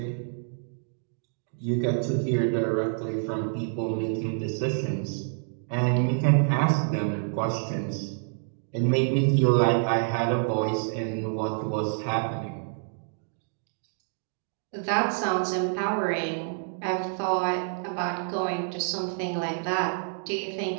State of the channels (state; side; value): silent; left; digital silence